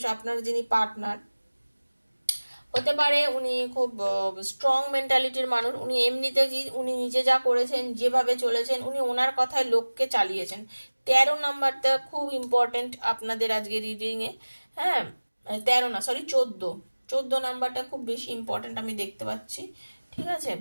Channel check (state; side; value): inverted; both; correlation -1.00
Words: আপনার যিনি পার্টনার হতে পারে উনি খুব স্ট্রং মেন্টালিটির মানুষ। উনি এমনিতে উনি নিজে যা করেছেন, যেভাবে চলেছেন, উনি ওনার কথায় লোককে চালিয়েছেন। 13 নাম্বারটা খুব ইম্পর্টেন্ট আপনাদের আজকে রিডিং এ, হ্যাঁ 13 না সরি 14 নাম্বারটা খুব বেশি ইম্পর্টেন্ট আমি দেখতে পাচ্ছি, ঠিক আছে।